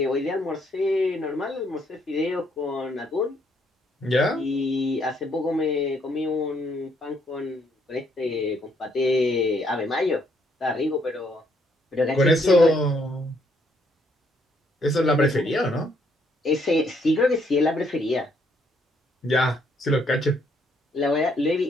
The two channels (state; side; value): normal; both; correlation 0.70